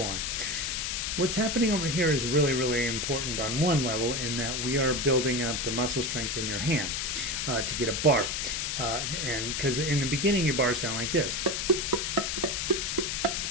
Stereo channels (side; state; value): left; noise; hiss, 1 dB below the sound